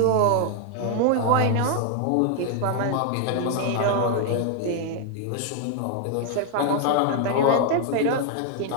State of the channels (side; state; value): both; different; correlation 0.00